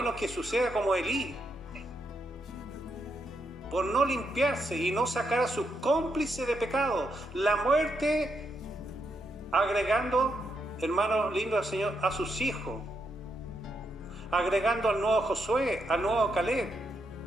que suceda como Elí, por no limpiarse y no sacar a sus cómplices de pecado, la muerte, agregando, hermano lindo del Señor, a sus hijos, agregando al nuevo Josué, al nuevo Caleb.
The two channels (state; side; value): normal; both; correlation 0.80